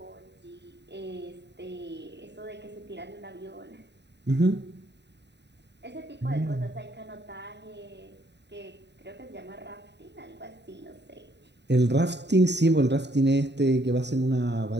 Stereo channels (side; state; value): left; late; 0.50 ms